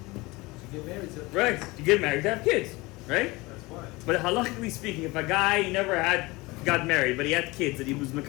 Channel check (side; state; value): right; quieter; 22.7 dB